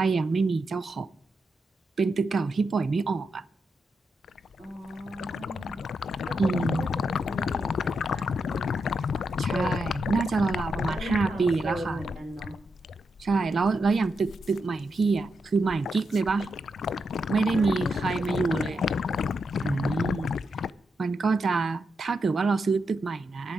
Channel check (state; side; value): normal; both; correlation 0.84